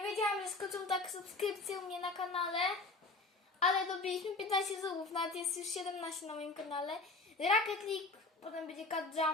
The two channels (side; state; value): right; quieter; 3.5 dB